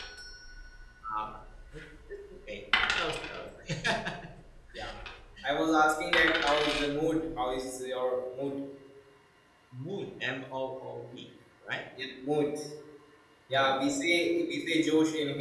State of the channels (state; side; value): identical; both; correlation 1.00